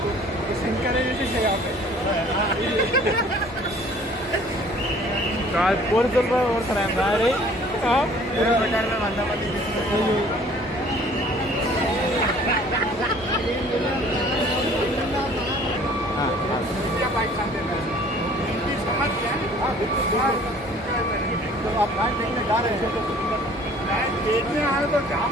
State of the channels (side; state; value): both; normal; correlation 0.53